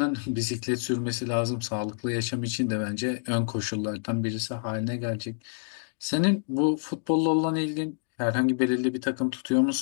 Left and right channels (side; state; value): right; silent; digital silence